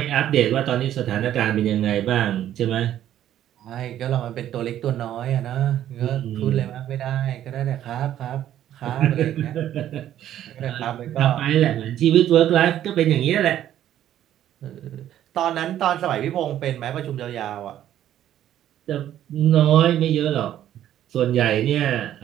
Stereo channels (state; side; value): quieter; left; 11.6 dB